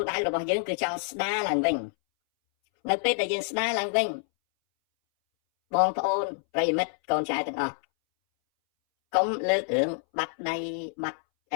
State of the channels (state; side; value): silent; right; 60 dB below the other